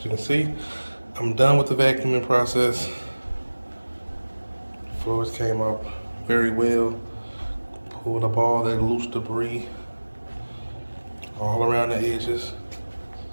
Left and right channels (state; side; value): inverted; both; correlation -1.00